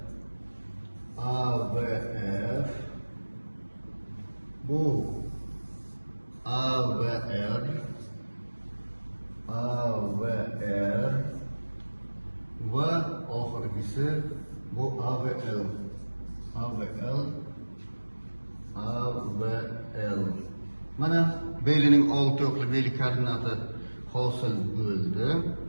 bu AVR, va oxirgisi bu AVL. Mana belining 6 o'qli beylik koordinati hosil bo'ldi.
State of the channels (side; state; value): both; inverted; correlation -1.00